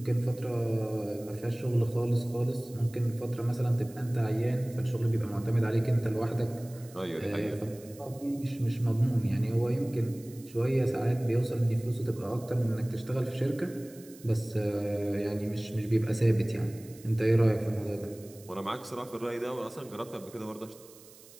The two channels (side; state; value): right; noise; hiss, 22 dB below the sound